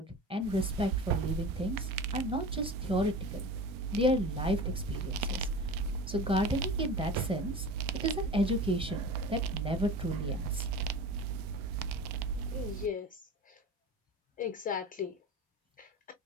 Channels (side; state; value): both; normal; correlation 0.34